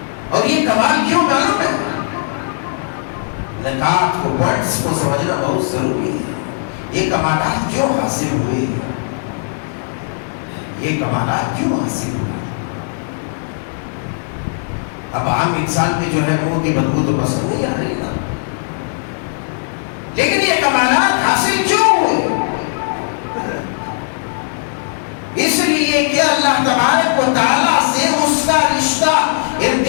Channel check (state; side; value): silent; right; 65 dB below the other